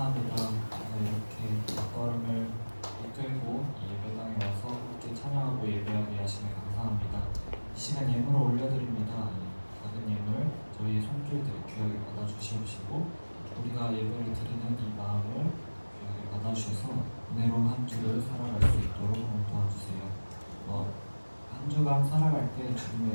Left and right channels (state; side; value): inverted; both; correlation -1.00